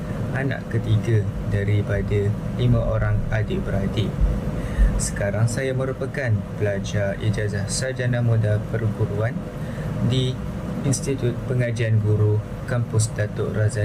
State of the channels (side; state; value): both; identical; correlation 1.00